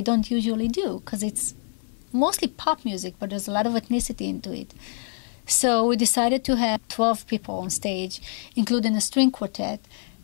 usually do, because it's mostly pop music, but there's a lot of ethnicity into it. So we decided to have 12 people on stage, including a string quartet,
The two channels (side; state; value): right; silent; 57 dB below the other